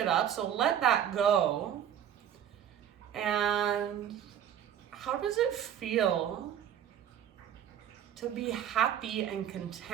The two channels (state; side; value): quieter; left; 9.8 dB